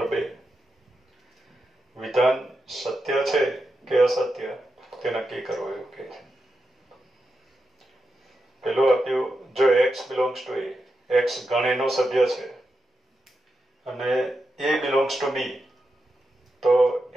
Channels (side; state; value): both; normal; correlation 0.87